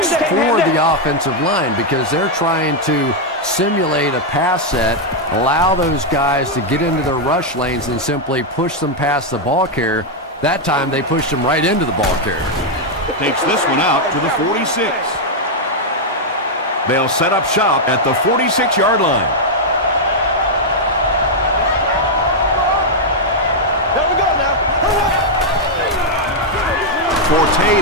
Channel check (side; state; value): both; normal; correlation -0.01